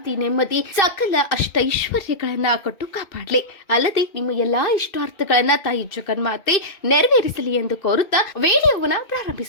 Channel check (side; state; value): right; late; 2.6 ms